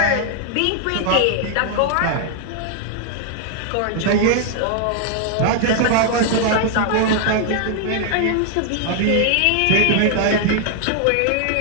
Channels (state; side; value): different; both; correlation 0.00